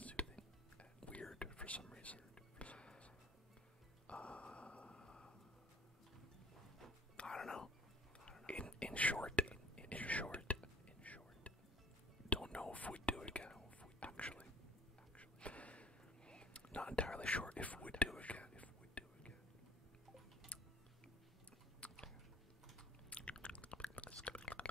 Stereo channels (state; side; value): normal; both; correlation 0.53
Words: weird for some reason. I don't know. In short, don't know if we'd do it again. Actually, not entirely sure if we'd do it again.